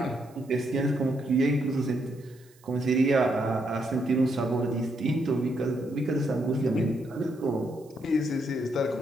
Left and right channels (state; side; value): noise; right; hiss, 29 dB below the sound